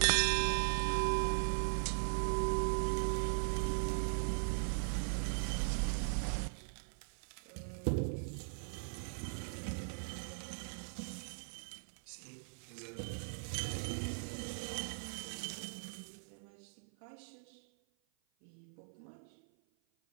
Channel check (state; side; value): silent; left; 51 dB below the other